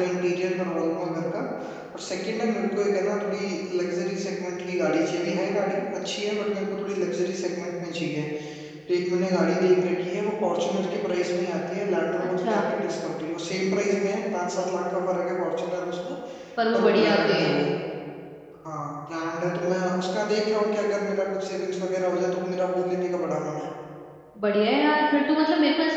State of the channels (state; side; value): identical; both; correlation 1.00